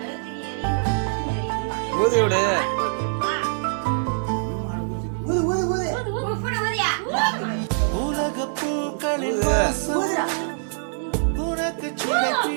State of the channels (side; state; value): left; silent; 63 dB below the other